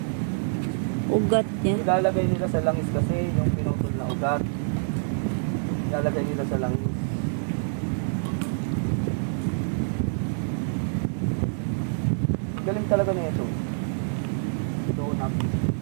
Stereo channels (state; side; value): silent; left; digital silence